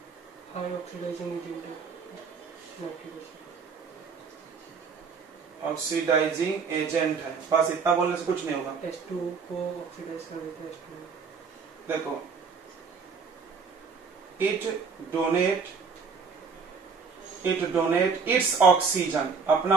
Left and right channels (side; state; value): left; quieter; 5.4 dB